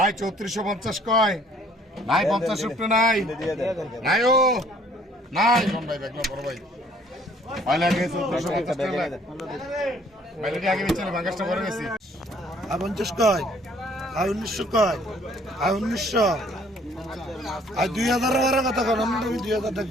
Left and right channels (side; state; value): both; normal; correlation 0.59